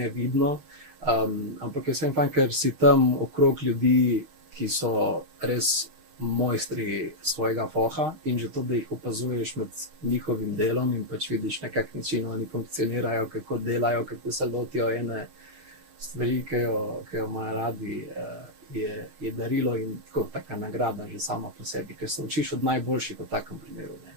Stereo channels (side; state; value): left; late; 6.4 ms